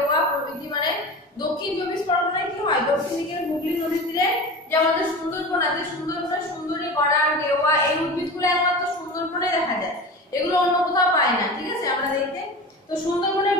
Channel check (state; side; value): normal; both; correlation 0.31